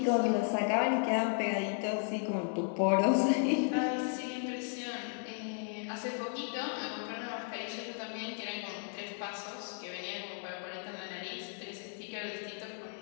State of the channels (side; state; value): right; silent; 55 dB below the other